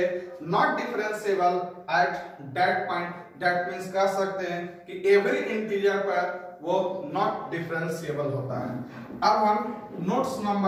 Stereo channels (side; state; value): both; identical; correlation 1.00